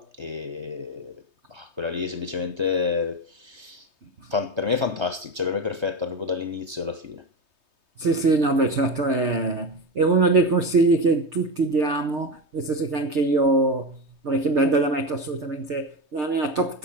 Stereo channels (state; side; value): late; left; 3.2 ms